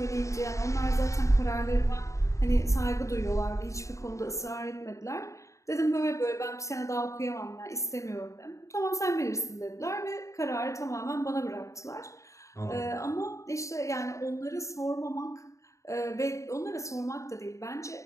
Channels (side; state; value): right; late; 0.15 ms